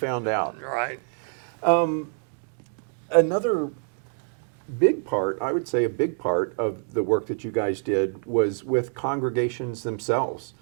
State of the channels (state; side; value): silent; left; 57 dB below the other